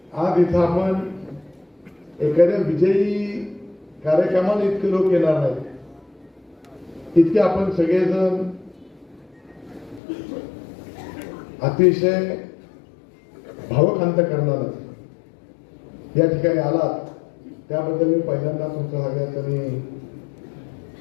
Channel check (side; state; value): right; drops out; at 10.0 s